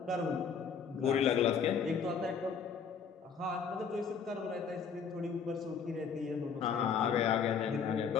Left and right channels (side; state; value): right; quieter; 6.4 dB